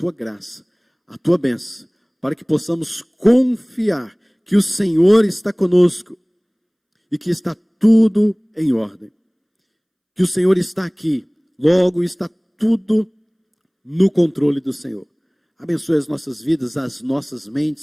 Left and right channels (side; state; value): both; identical; correlation 1.00